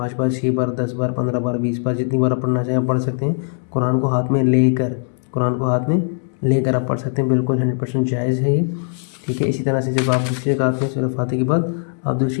बार, 6 बार, 10 बार, 15 बार, 20 बार, जितनी बार आप पढ़ना चाहें आप पढ़ सकते हैं। कुरान को हाथ में लेकर, कुरान को हाथ में लेकर आप पढ़ सकते हैं, बिल्कुल 100% जायज़ है ये, ठीक है। इसी तरह से जब आप दूसरी रकात में सूरह फ़ातिहा के बाद आप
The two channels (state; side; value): silent; right; 64 dB below the other